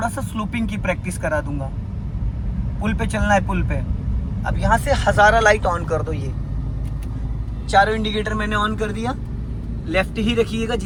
सा स्लोपिंग की प्रैक्टिस करा दूंगा। पुल पे चलना है, पुल पे। अब यहाँ से हजारा लाइट ऑन कर दो। ये चारों इंडिकेटर मैंने ऑन कर दिया। लेफ्ट ही रखिएगा,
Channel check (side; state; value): both; identical; correlation 1.00